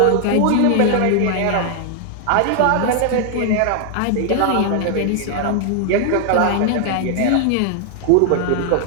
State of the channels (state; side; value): different; both; correlation 0.00